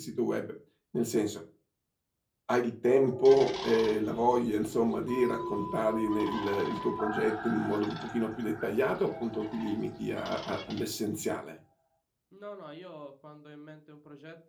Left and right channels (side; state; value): both; identical; correlation 1.00